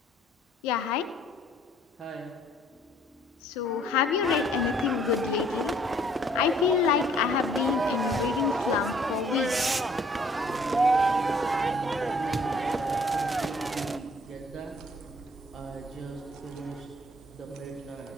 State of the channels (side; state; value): both; normal; correlation 0.60